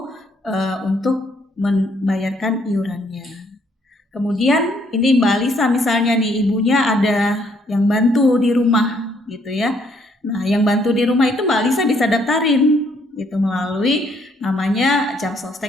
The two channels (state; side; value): normal; both; correlation 0.68